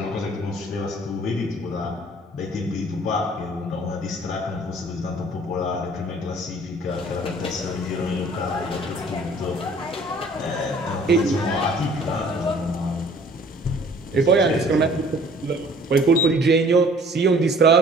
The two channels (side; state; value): both; normal; correlation 0.54